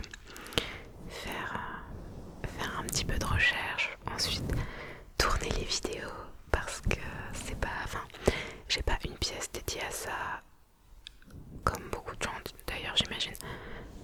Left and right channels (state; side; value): identical; both; correlation 1.00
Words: Faire un petit peu de recherche, ensuite tourner les vidéos parce que j'ai pas une pièce dédiée à ça comme beaucoup de gens d'ailleurs j'imagine.